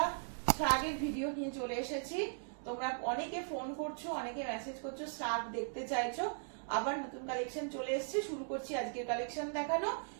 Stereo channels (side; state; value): left; silent; digital silence